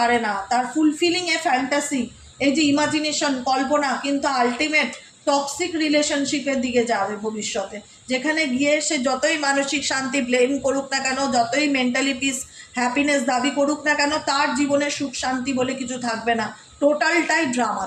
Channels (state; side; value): identical; both; correlation 1.00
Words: না, তার ফুলফিলিং এ ফ্যান্টাসি, এই যে ইমাজিনেশন কল্পনা, কিন্তু আলটিমেট টক্সিক রিলেশনশিপের দিকে যাবে ভবিষ্যতে, যেখানে গিয়ে সে যতই মানসিক শান্তি ব্লেম করুক না কেন, যতই মেন্টালি পিস হ্যাপিনেস দাবি করুক না কেন, তার জীবনে সুখ শান্তি বলে কিছু থাকবে না, টোটালটাই ড্রামা